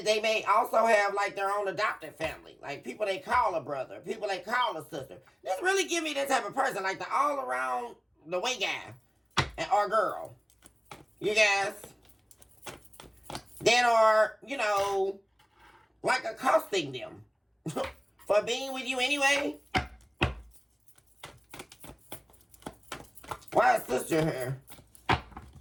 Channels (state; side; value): identical; both; correlation 1.00